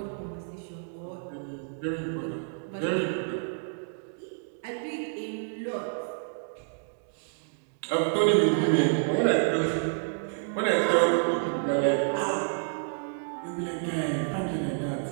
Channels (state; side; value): silent; left; digital silence